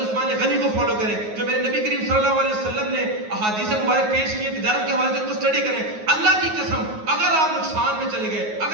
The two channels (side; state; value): left; late; 9.4 ms